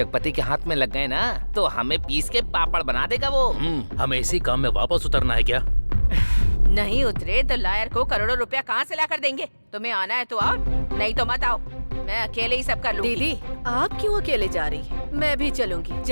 के हाथ में लग गए ना तो हमें पीस के पापड़ बना देगा वो। हमें इसी काम में वापस उतरना है क्या? नहीं उतरे तो लायर को करोड़ों रुपया कहाँ से ला कर देंगे? तुम्हें आना है तो आओ, नहीं तो मत आओ। मैं अकेले ही सब कर लूंगी। दीदी, आप क्यों अकेले जा रही हैं? मैं भी चलूंगी।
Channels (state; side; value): inverted; both; correlation -1.00